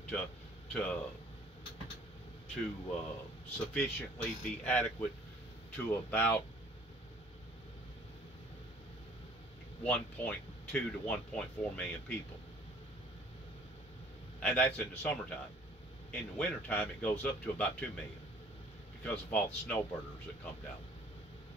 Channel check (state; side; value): normal; both; correlation 0.55